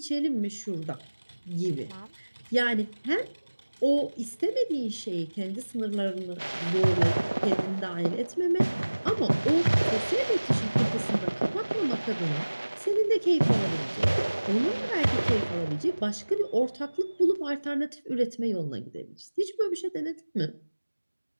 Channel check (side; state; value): both; inverted; correlation -1.00